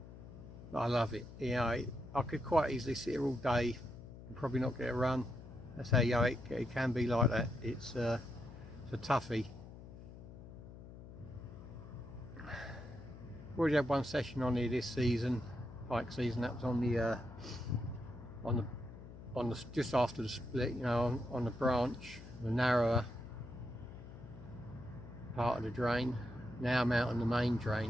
but I love it. You know, I could quite easily sit here all day and probably not get a run. That's how, you know, it can be like that. It's a toughie. Already had one session on here this season, pike season. That was on the just after the split, you know, on the branch, the narrower part of the drain. Now I'm out on the main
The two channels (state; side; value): noise; left; hum, 15 dB below the sound